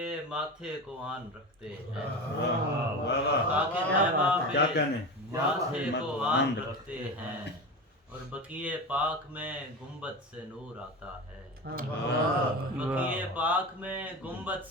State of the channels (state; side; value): normal; both; correlation 0.26